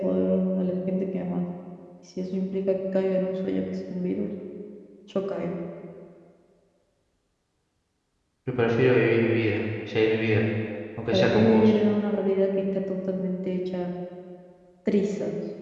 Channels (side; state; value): both; identical; correlation 1.00